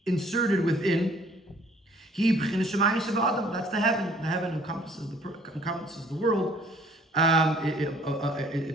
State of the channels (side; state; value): both; normal; correlation 0.57